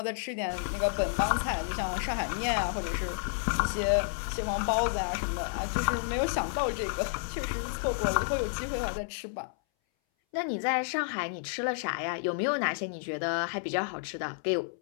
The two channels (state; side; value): silent; right; 57 dB below the other